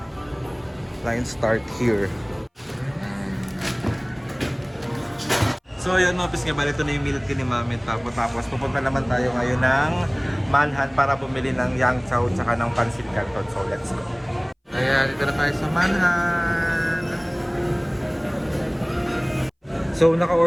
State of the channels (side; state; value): both; identical; correlation 1.00